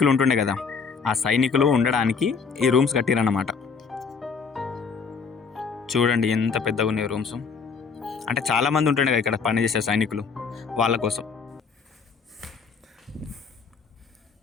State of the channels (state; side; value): quieter; right; 5.4 dB